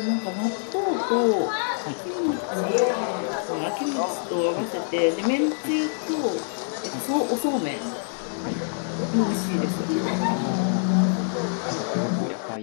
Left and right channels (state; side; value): silent; right; digital silence